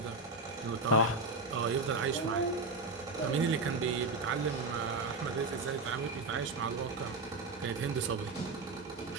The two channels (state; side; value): quieter; left; 3.3 dB